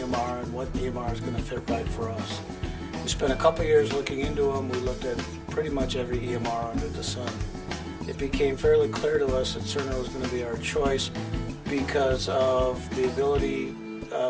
and what EMR is going to fit right for us? We spent a couple years looking into them. We looked at pretty much every EMR under the sun. It became fairly clear to us that Cerner was going to be our choice because of the ability,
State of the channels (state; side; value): identical; both; correlation 1.00